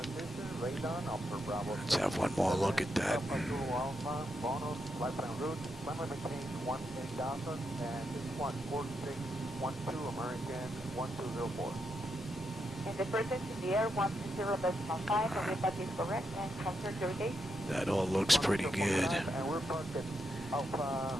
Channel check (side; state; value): both; normal; correlation 0.83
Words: radon, upper Bravo. Let's have one more look at that. Alpha Zulu Alpha, bonus, lifetime route, climate maintain 18,000, and this one 4612, American 1204. In the presence in the air, 120.5, and if that is correct, and confirm your gate. That all looks pretty good. And we're parked at